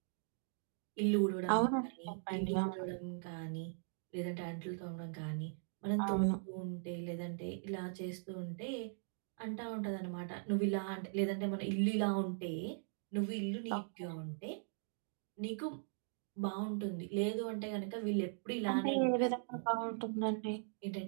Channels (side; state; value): left; silent; digital silence